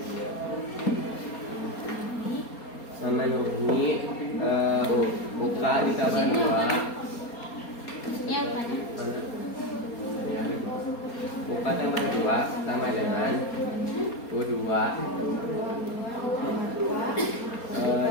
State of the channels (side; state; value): right; late; 4.3 ms